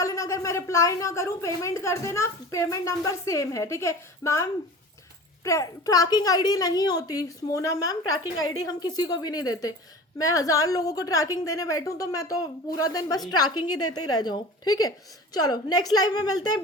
लेना। अगर मैं रिप्लाई ना करूँ पेमेंट कर देना, पेमेंट नंबर सेम है। ठीक है मैम, ट्रैकिंग आईडी नहीं होती मोना मैम, ट्रैकिंग आईडी हम किसी को भी नहीं देते। मैं 1000 लोगों को ट्रैकिंग देने बैठूं तो मैं तो पूरा दिन बस ट्रैकिंग ही देते ही रह जाऊं। ठीक है चलो नेक्स्ट लाइव में मिलते हैं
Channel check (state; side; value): normal; both; correlation 0.38